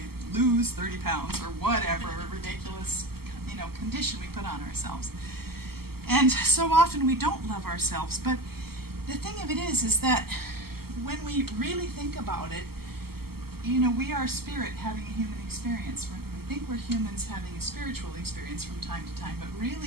lose 30 pounds or whatever ridiculous, condition we put on ourselves. And so often we don't love ourselves. But the thing of it is that when we really think about it, we are spirit having a human experience. We think we're humans having a spiritual experience from time to time, but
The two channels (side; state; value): left; late; 0.95 ms